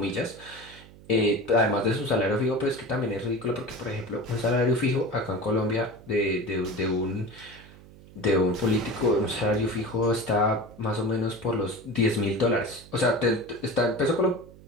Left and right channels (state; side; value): noise; right; hum, 21 dB below the sound